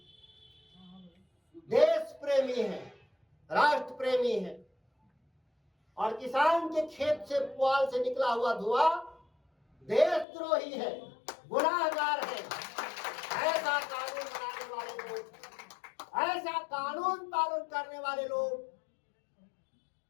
देश प्रेमी है, राष्ट्र प्रेमी है, और किसान के खेत से पुआल से निकला हुआ धुआं देशद्रोही है, गुनाहगार है। ऐसा कानून बनाने वाले लोग, ऐसा कानून पालन करने वाले लोग,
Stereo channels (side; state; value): right; drops out; at 10.2 s